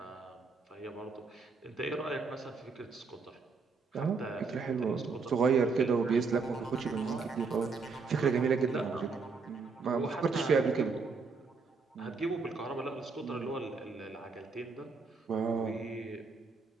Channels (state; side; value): quieter; left; 4.6 dB